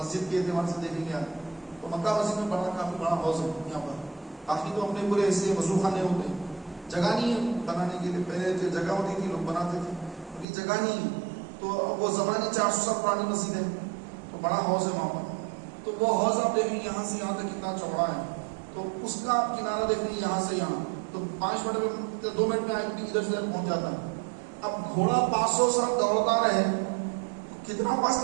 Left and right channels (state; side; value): drops out; left; at 10.5 s